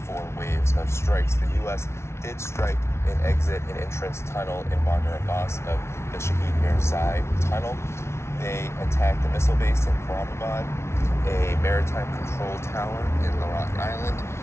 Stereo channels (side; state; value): right; late; 0.13 ms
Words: 4 waves of strikes. The U.S. did strike an exit and entrance tunnel in Bandar Abbas of the Shahid Mirzai tunnel. They attacked the missile base in Karamabad, a maritime control tower in Lorat Island.